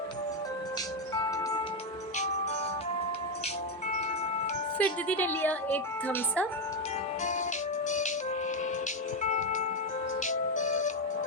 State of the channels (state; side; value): normal; both; correlation 0.06